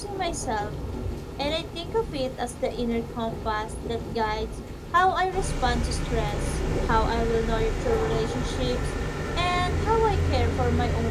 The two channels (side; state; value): both; identical; correlation 1.00